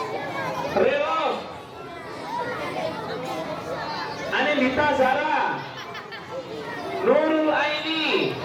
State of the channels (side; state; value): both; identical; correlation 1.00